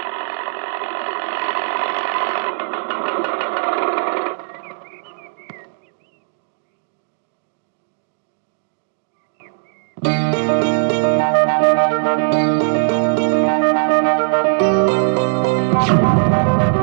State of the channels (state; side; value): silent; left; digital silence